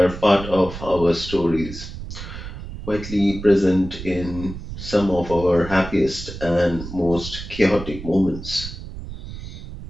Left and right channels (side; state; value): right; noise; rumble, 11 dB below the sound